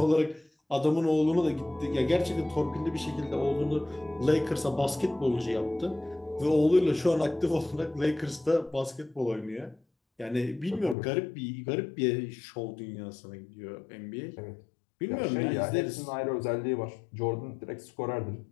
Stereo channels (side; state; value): right; drops out; at 11.0 s